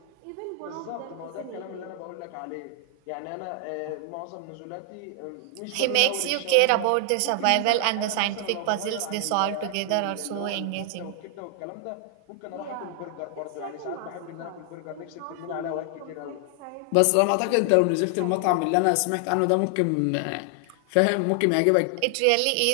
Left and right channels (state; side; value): different; both; correlation 0.00